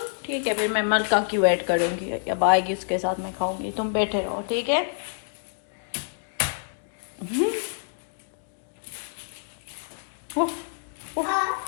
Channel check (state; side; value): silent; right; digital silence